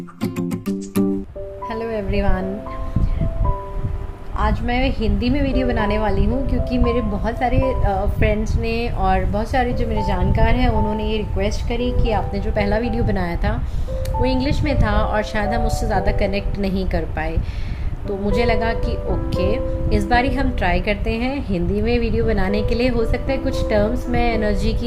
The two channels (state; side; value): identical; both; correlation 1.00